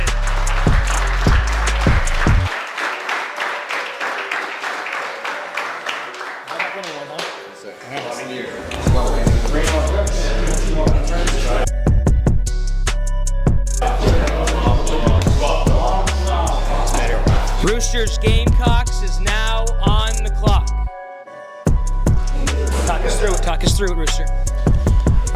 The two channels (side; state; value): both; identical; correlation 1.00